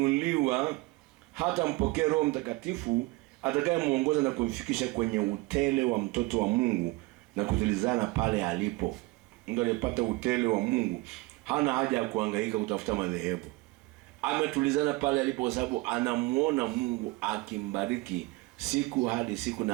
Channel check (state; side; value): quieter; left; 22.5 dB